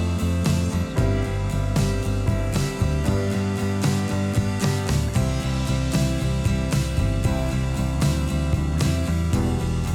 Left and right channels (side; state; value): both; identical; correlation 1.00